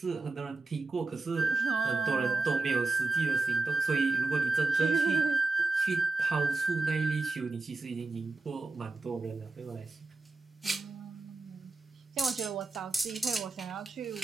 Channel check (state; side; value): quieter; left; 3.3 dB